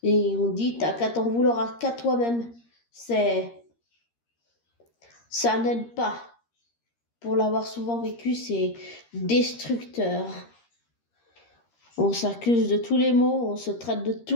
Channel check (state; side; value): late; right; 13 ms